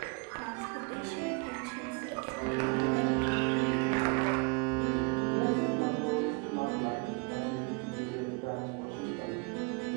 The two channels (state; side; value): quieter; left; 31.5 dB